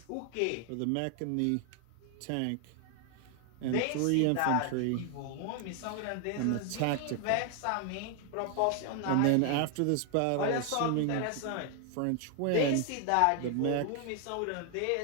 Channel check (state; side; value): different; both; correlation 0.00